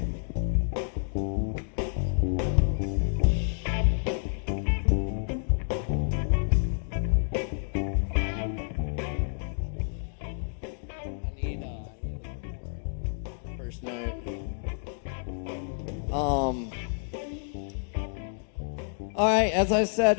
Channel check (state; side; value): silent; right; digital silence